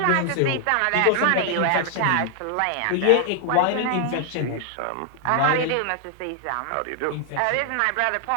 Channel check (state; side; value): different; both; correlation 0.00